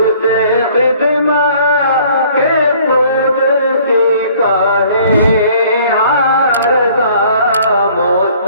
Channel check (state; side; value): inverted; both; correlation -0.56